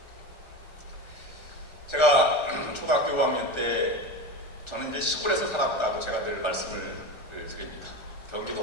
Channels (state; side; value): late; right; 1.3 ms